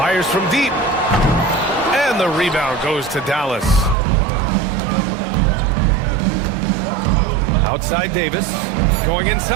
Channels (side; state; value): left; drops out; at 4.0 s